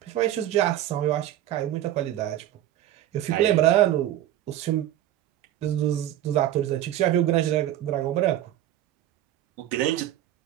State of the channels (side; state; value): left; quieter; 12.8 dB